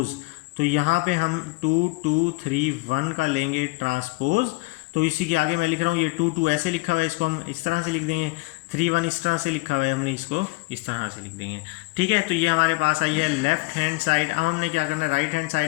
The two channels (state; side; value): quieter; right; 27.0 dB